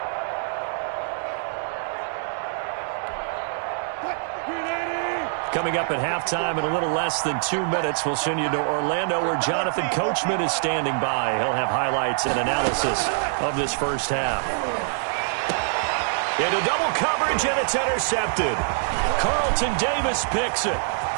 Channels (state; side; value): silent; left; digital silence